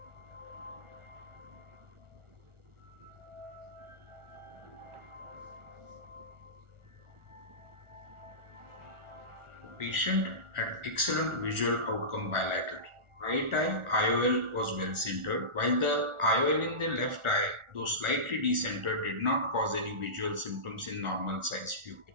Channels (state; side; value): late; left; 1.4 ms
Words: The patient had excellent visual outcome bilaterally. Right eye IOL was well centered, while the IOL in the left eye, though slightly decentered, did not cause any visual symptoms in normal sized pupil.